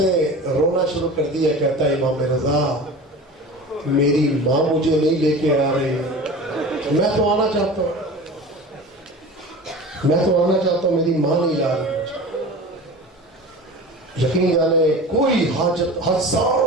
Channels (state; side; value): normal; both; correlation 0.35